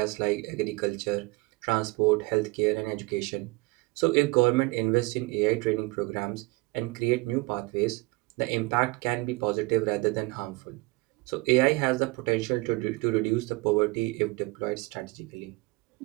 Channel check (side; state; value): left; quieter; 24.1 dB